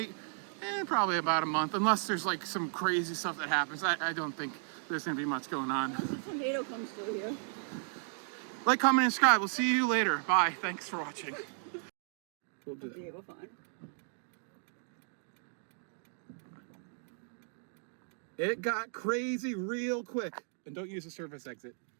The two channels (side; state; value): left; silent; 55 dB below the other